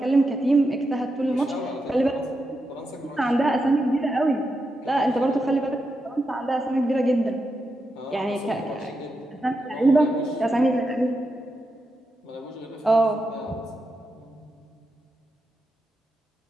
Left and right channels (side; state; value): both; normal; correlation 0.86